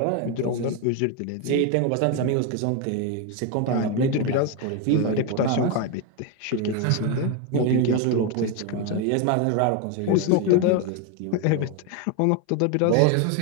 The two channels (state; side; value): different; both; correlation 0.02